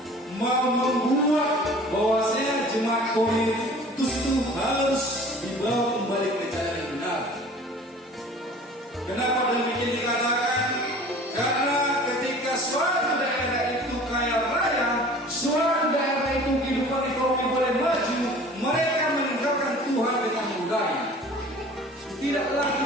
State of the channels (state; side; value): normal; both; correlation 0.45